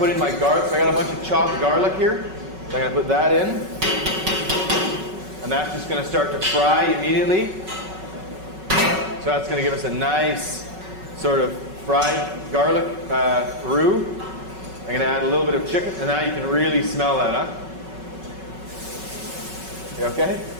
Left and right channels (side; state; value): left; late; 5.3 ms